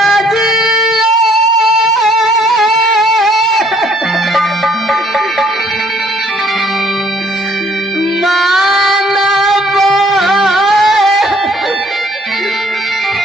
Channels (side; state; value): both; normal; correlation 0.62